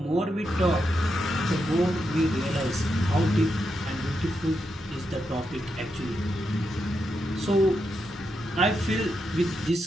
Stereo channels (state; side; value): normal; both; correlation 0.84